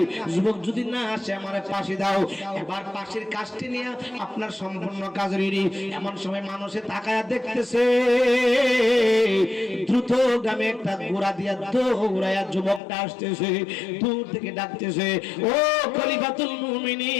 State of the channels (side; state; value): right; drops out; at 12.8 s